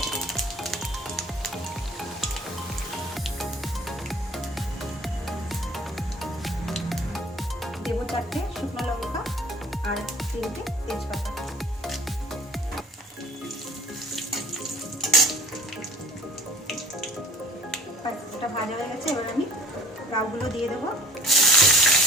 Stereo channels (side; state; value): both; normal; correlation 0.49